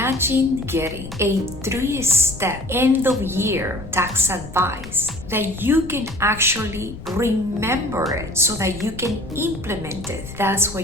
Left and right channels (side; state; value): left; noise; rumble, 14 dB below the sound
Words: getting a 3-step end-of-year tax advice that you can actually remember it so that you can implement it. That's